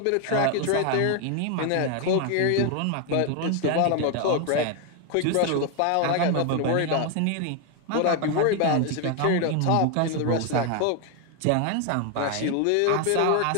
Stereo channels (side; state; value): both; different; correlation 0.01